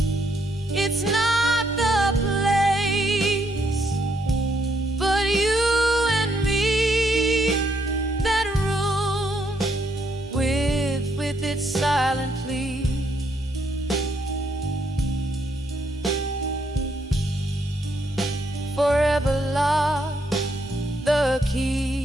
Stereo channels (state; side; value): normal; both; correlation 0.74